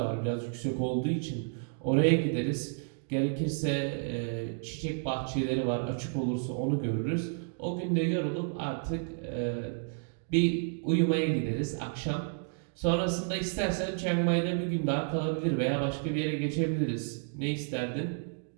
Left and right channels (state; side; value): silent; left; 57 dB below the other